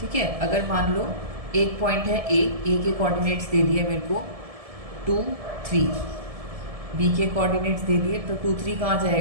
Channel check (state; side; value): late; left; 1.7 ms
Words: है, अगर मान लो एक पॉइंट है ए के कोऑर्डिनेट्स दे दिए मेरे को 2 3, बी के कोऑर्डिनेट्स दे दिए तो 2 3 कहाँ